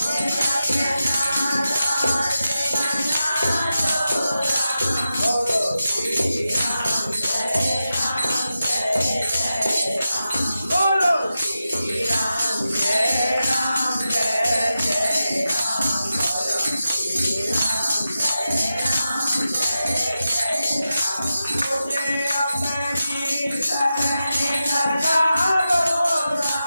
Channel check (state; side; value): inverted; both; correlation -0.91